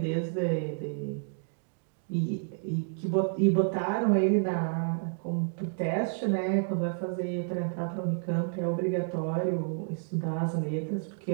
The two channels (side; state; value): left; silent; digital silence